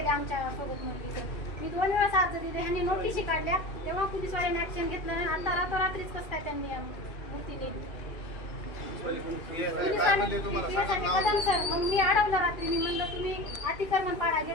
आमच्या सोबत मुलगीचं. मी 2 वेळाच अर्ज दिले, ह्यांनी नोटीसी काढल्या. तेव्हा पोलिसवाल्यांनी ऍक्शन घेतलं नाही. आता रात्रीच कसं काय त्यांनी मूर्ती नेली सर. मग मी अडवलं रात्री. मी म्हणलं तुम्ही अतिक्रमण पाडा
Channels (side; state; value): right; late; 2.6 ms